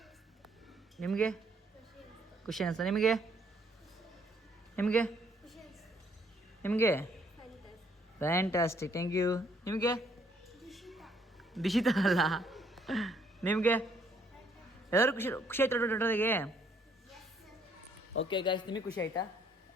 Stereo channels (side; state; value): both; normal; correlation 0.67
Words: ನಿಮಗೆ ಖುಷಿ ಅನ್ನಿಸ್ತಾ? ನಿಮಗೆ ನಿಮಗೆ ನಿಮಗೆ ಫ್ಯಾಂಟಾಸ್ಟಿಕ್. Thank you. ನಿಮಗೆ ದಿಶಿತಾ ಅಲ್ಲ ನಿಮಗೆ? ಎಲ್ಲರೂ ಖುಷಿ ಖುಷಿ ಆಯ್ತು ದೊಡ್ಡದಾಗೆ? ಓಕೆ ಗಾಯ್ಸ್, ನಿಮಗೆ ಖುಷಿ ಆಯ್ತಾ?